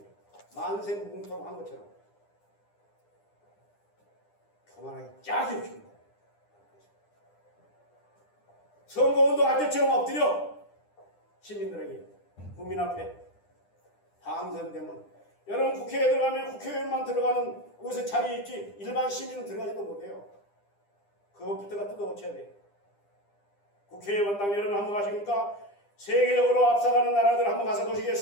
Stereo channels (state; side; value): late; right; 9.9 ms